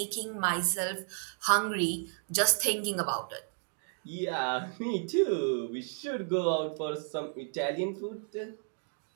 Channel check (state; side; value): silent; left; 56 dB below the other